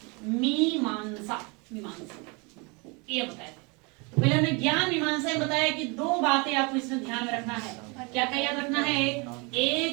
मीमांसा, मीमांसा ये बताया थे। तो पहले हमने ज्ञान मीमांसा में बताया कि 2 बातें आपको इसमें ध्यान में रखना है। क्या क्या याद रखना है?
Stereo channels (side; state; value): left; quieter; 29.9 dB